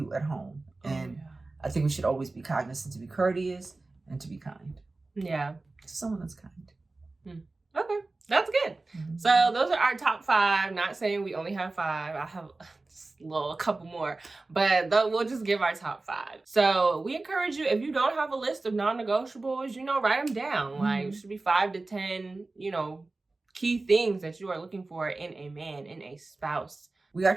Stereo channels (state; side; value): quieter; left; 3.3 dB